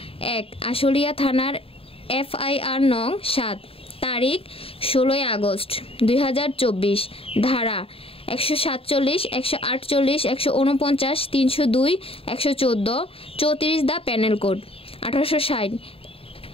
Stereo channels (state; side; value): late; right; 0.27 ms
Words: আশুলিয়া থানার FIR নং ৭ তারিখ ১৬ আগস্ট ২০২৪ ধারা ১৪৭, ১৪৮, ১৪৯, ৩০২, ১১৪, ৩৪ দ্য প্যানেল কোড ১৮৬০